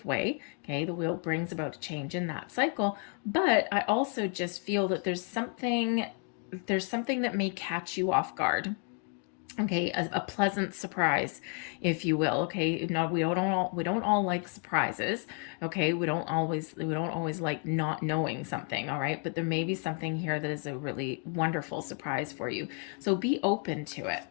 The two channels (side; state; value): right; quieter; 39.7 dB